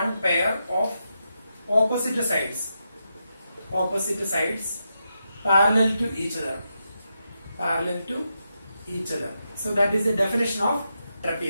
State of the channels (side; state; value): both; inverted; correlation -0.85